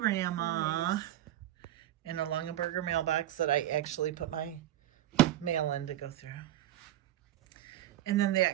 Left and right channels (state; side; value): quieter; left; 13.4 dB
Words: in a Lungenberger mailbox that I actually put my mail in to go through. And then